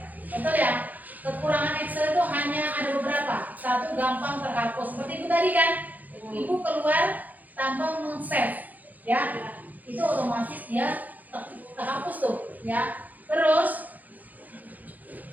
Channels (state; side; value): late; left; 0.082 ms